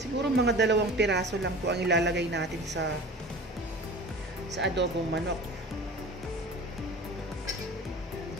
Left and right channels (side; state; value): both; normal; correlation 0.39